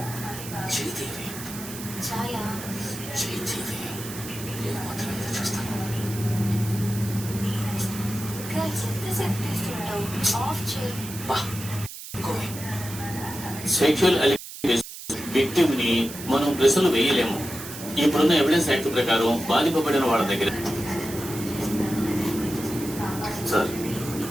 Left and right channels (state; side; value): noise; right; hiss, 12 dB below the sound